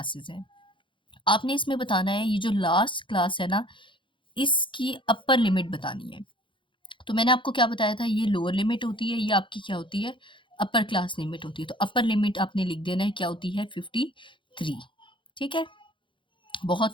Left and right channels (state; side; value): late; right; 0.24 ms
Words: हैं। आपने इसमें बताना है ये जो लास्ट क्लास है ना, इसकी अपर लिमिट बतानी है। तो मैंने आपको क्या बताया था, ये लोअर लिमिट होती है, ये आपकी क्या होती है, अपर क्लास लिमिट होती है। तो अपर लिमिट आपने लिख देना है, क्या होती है, 53। ठीक है,